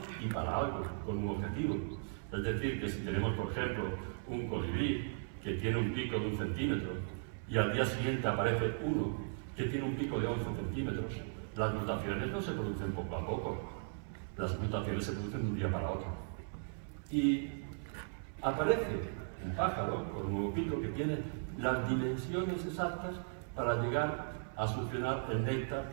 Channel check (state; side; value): silent; left; 53 dB below the other